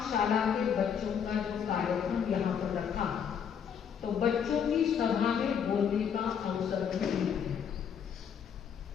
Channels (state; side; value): quieter; right; 7.7 dB